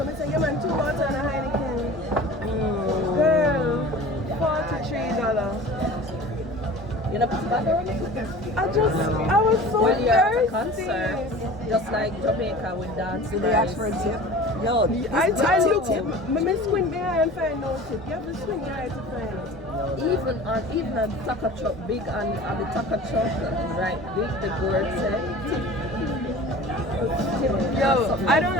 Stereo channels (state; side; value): normal; both; correlation 0.40